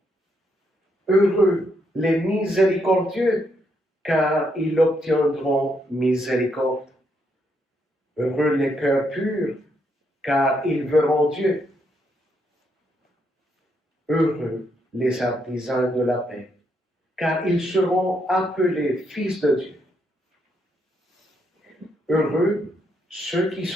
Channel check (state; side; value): normal; both; correlation 0.76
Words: Heureux les miséricordieux, car ils obtiendront miséricorde. Heureux les cœurs purs, car ils verront Dieu. Heureux les artisans de la paix, car ils seront appelés fils de Dieu. Heureux ceux qui